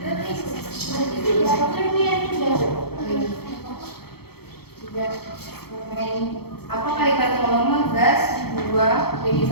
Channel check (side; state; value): right; late; 0.96 ms